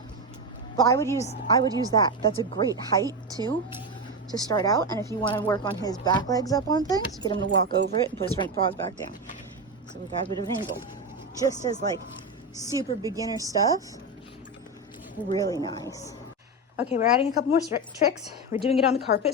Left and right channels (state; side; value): normal; both; correlation 0.14